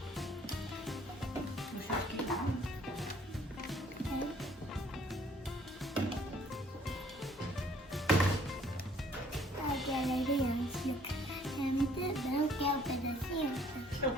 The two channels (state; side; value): normal; both; correlation 0.59